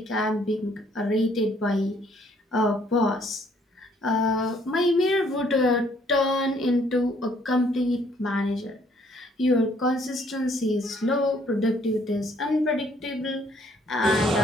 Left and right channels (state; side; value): normal; both; correlation 0.64